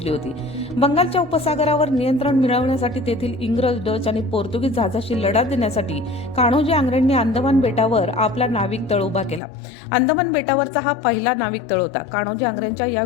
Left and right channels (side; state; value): right; drops out; at 9.4 s